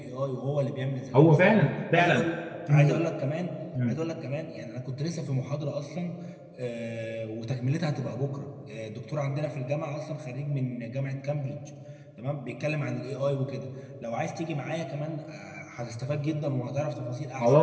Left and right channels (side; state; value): both; identical; correlation 1.00